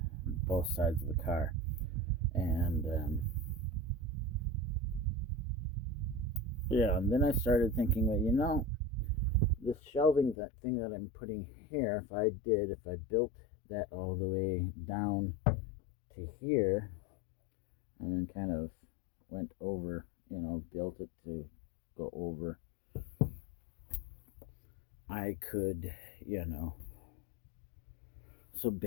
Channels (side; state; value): right; drops out; at 10.4 s